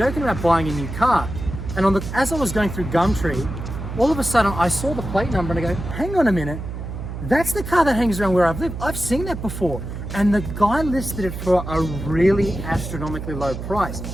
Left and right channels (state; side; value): noise; right; hum, 7 dB below the sound